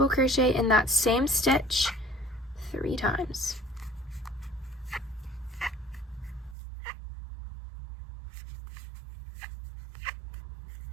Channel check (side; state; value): left; drops out; at 6.6 s